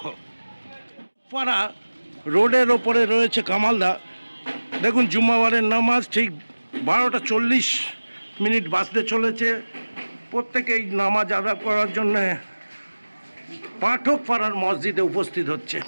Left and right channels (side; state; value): both; inverted; correlation -1.00